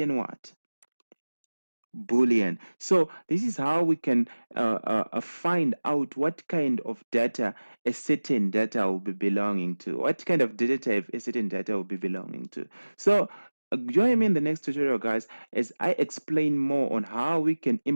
what? Boolean. So this is how we can find out what kind of data a certain data will be belonging to, what kind of data type a certain data will be belonging to. So join me in the next tutorial, guys, as I explain more on how we can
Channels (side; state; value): both; inverted; correlation -1.00